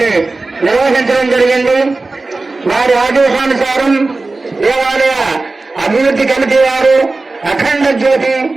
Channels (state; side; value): quieter; left; 3.4 dB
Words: నిర్వహించడం జరిగింది. వారి ఆదేశానుసారం దేవాలయ అభివృద్ధి కమిటీ వారు, అఖండ జ్యోతి